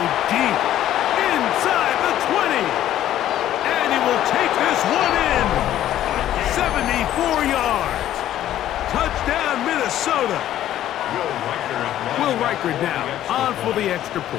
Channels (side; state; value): right; quieter; 12.4 dB